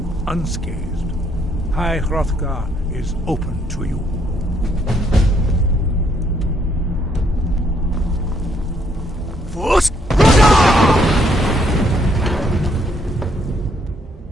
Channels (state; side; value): normal; both; correlation 0.70